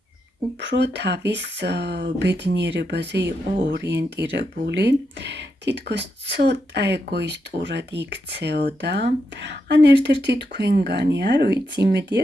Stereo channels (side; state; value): both; normal; correlation 0.84